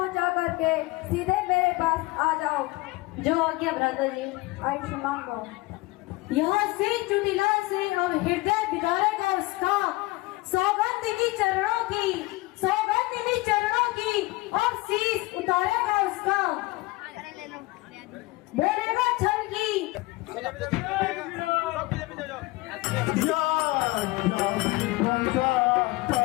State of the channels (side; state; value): right; quieter; 21.7 dB